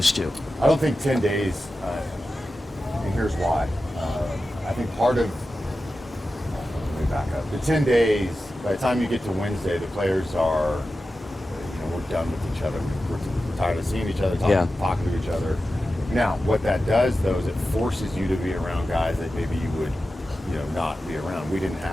to? I don't think 10 days, and here's why. I think part of, let me back up. The 10 days, by the time you get to Wednesday, the players are, we're done with each other. We're tired of seeing each other, talking to each other. Now, what that does, though, is it forces you to be around guys that maybe you would, not be around. We didn't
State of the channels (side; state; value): both; normal; correlation 0.93